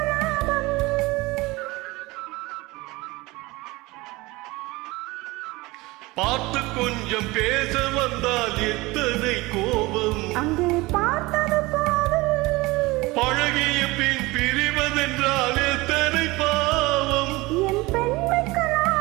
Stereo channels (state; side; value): quieter; left; 21.8 dB